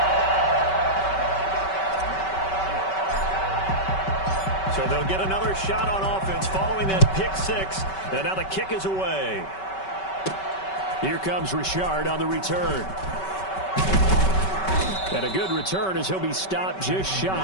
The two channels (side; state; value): right; late; 5.2 ms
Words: So they'll get another shot on offense following that pick 6. And now the kick is away. Here comes Richard on the return. And a good return as he'll be stopped just